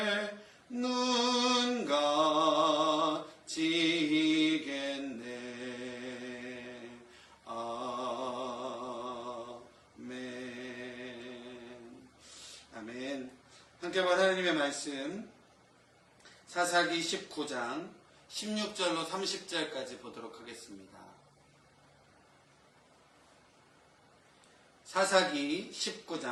눈 가지겠네. 아멘. 아멘. 함께 본 하나님의 말씀 사사기 19장 16절로 30절까지 보도록 하겠습니다. 사사기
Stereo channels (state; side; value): identical; both; correlation 1.00